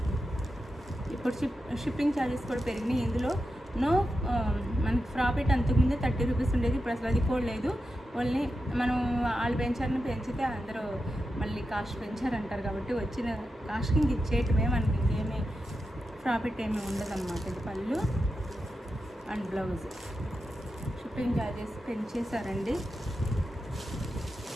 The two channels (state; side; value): normal; both; correlation 0.89